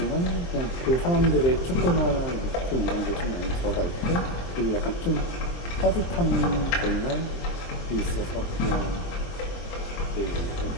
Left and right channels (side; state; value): right; late; 23 ms